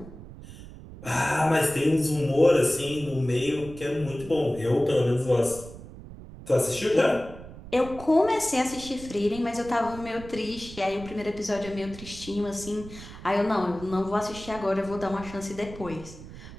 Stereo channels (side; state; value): right; noise; rumble, 15 dB below the sound